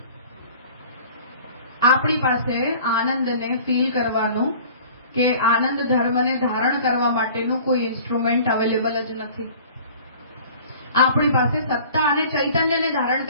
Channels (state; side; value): inverted; both; correlation -0.47